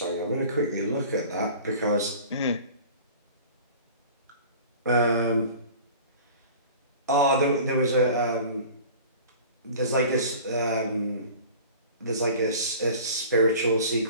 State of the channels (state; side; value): inverted; both; correlation -0.42